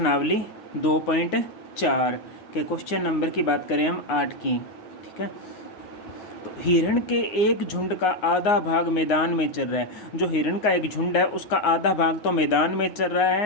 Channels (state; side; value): late; right; 9.6 ms